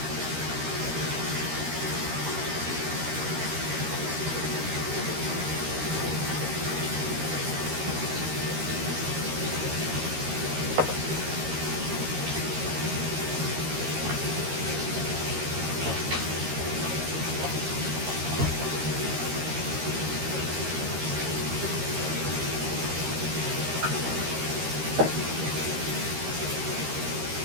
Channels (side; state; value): left; late; 13 ms